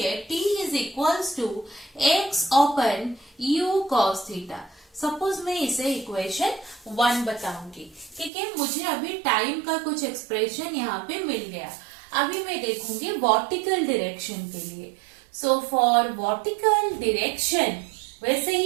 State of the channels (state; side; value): drops out; left; at 8.3 s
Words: t is equals to x open u cos theta. Suppose मैं इसे इक्वेशन 1 बताऊंगी। ठीक है, मुझे अभी टाइम का कुछ एक्सप्रेशन यहाँ पे मिल गया। अभी मैं देखूंगी वर्टिकल डायरेक्शन के लिए। सो फॉर वर्टिकल डायरेक्शन वैसे